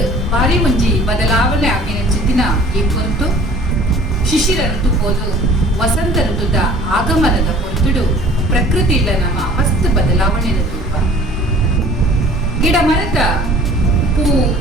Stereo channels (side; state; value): both; normal; correlation 0.50